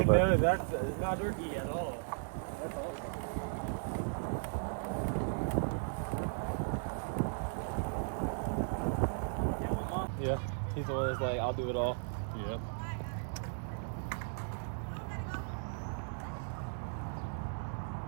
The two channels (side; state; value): left; silent; digital silence